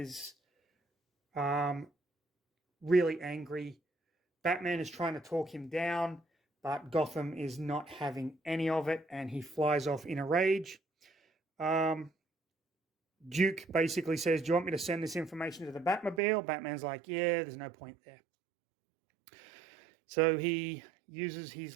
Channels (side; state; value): left; drops out; at 16.2 s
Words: really angry. Batman is trying to talk him down, but Gotham is not having any of it, and he flies off in a rage. Duke basically says, "Do you want me to send this information to the Batmobile?" Batman's like, "Yeah, there's no point there." So he uses his